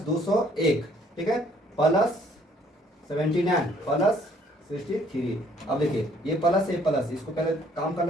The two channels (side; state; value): both; normal; correlation 0.62